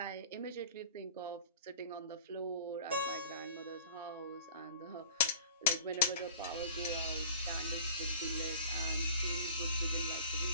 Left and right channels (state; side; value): inverted; both; correlation -0.43